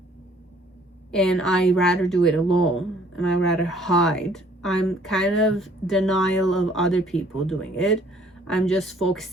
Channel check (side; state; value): both; normal; correlation 0.59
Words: and I rather do it alone and I rather hide, I'm kind of denial of other people doing it. I'm just